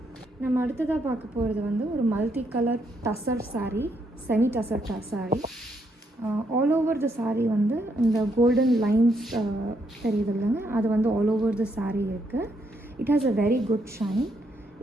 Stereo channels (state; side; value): normal; both; correlation 0.76